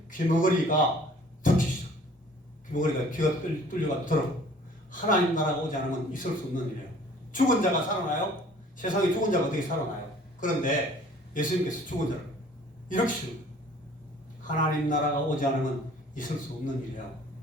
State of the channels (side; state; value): both; normal; correlation 0.52